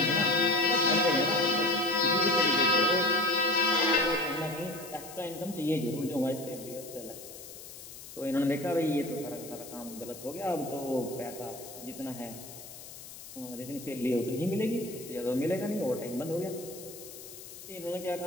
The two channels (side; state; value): left; noise; hiss, 14 dB below the sound